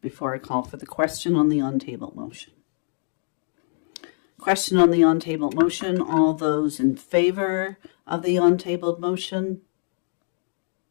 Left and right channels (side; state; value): right; silent; 62 dB below the other